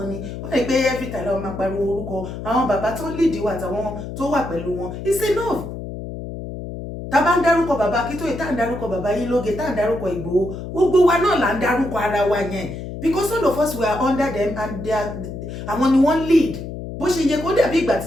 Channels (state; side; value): noise; left; hum, 9 dB below the sound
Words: ni wọ́n lè pé every time láwọn máa pariwo orúkọ àwọn bàbá tó lead wa àtàwọn tó wà pẹ̀lú wọn it's enough tá a bá ń dárúkọ bàbá Akíntóyè tá à ń dárúkọ bàbá Yílóge tá à ń dárúkọ Ìgbòho gbogbo wa náà là ń dárúkọ ara wa yẹn because all of us were under them and àwọn ni wọ́n lead bó ṣe yẹ kó dàbí ìgbà